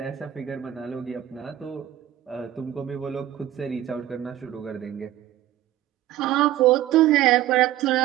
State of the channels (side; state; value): left; quieter; 13.2 dB